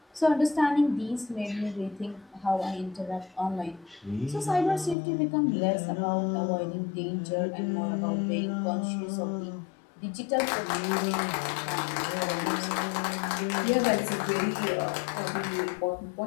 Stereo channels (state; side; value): drops out; right; at 5.0 s